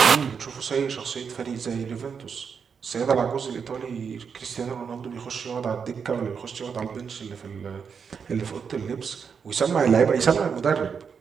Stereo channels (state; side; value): quieter; left; 6.4 dB